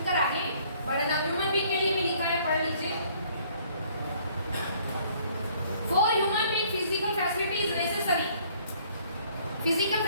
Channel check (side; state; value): both; inverted; correlation -0.60